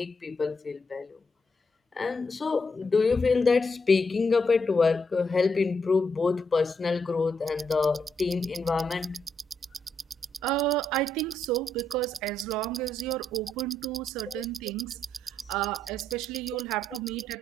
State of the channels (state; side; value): normal; both; correlation 0.78